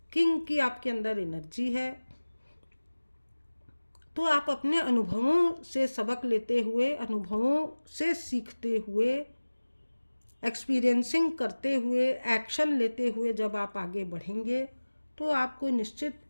किंग की आपके अंदर एनर्जी है। तो आप अपने अनुभवों से सबक लेते हुए, अनुभवों से सीखते हुए, एक्सपीरियंसिंग करते हुए, एक्शन लेते हुए जब आप आगे बढ़ेंगे तो आपको निश्चित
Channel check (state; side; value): inverted; both; correlation -1.00